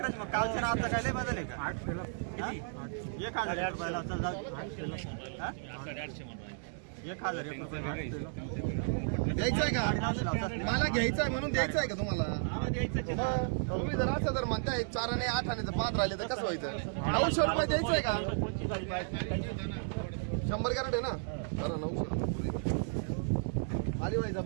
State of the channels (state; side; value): silent; left; digital silence